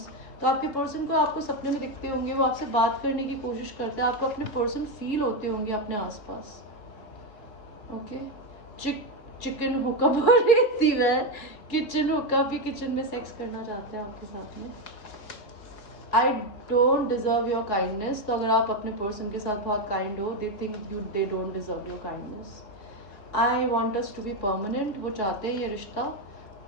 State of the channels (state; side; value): late; right; 4.7 ms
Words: तो आपके पर्सन को आपको सपने में दिखते होंगे, वो आपसे बात करने की कोशिश करते हैं, आपको अपने पर्सन फील होते होंगे अपने आसपास। ओके, चिकन हुक्का बोल रही थी मैं, किचन हुक्का भी, किचन में सेक्स करना चाहते हैं आपके साथ में। I don't deserve your kindness, तो अगर आप अपने पर्सन के साथ बहुत काइंड हो, they think you they don't deserve your kindness. I want us to be permanent, वो चाहते हैं ये रिश्ता